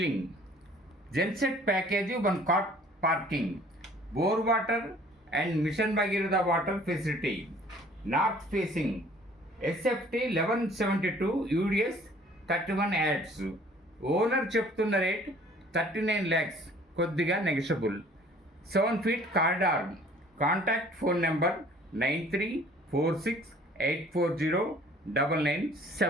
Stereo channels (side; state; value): both; normal; correlation 0.54